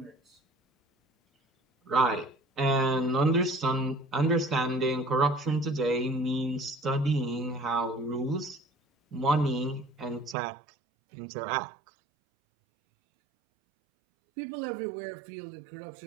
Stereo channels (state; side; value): drops out; left; at 10.4 s